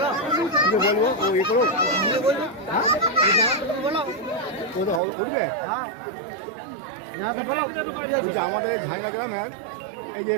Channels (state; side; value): drops out; left; at 5.0 s